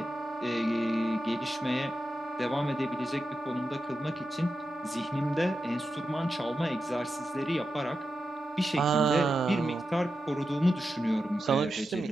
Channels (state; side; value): normal; both; correlation 0.89